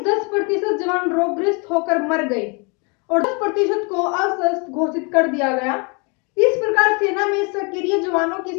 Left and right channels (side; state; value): right; quieter; 32.8 dB